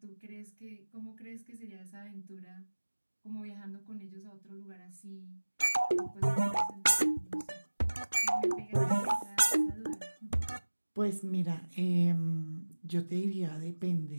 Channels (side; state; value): both; inverted; correlation -1.00